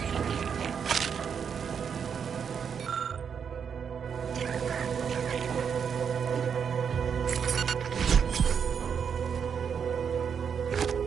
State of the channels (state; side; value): quieter; left; 7.1 dB